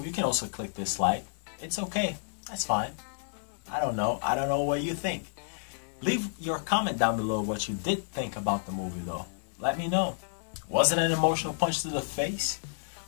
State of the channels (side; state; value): right; silent; 58 dB below the other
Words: you can also click dislike. It's okay. That's fine. I don't know. I don't know what you think. Leave your comment down below what you did think about the movie, though. Let me know. Was it an emotional punch to the face?